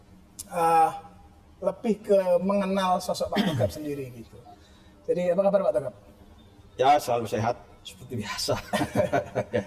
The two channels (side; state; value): both; identical; correlation 1.00